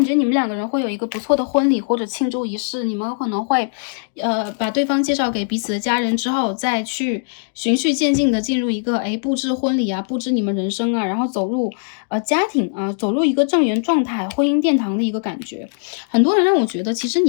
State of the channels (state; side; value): silent; right; digital silence